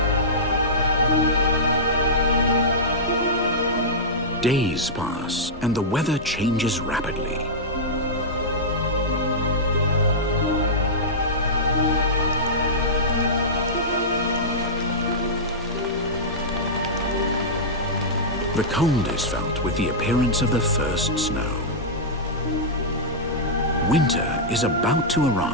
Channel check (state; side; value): normal; both; correlation -0.12